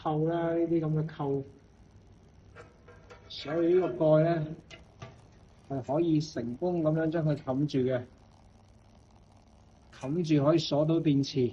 啦，呢啲咁嘅扣。所以呢個蓋咧係可以成功咁樣將佢冚住嘅，冚住可以鎖到電池。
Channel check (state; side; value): identical; both; correlation 1.00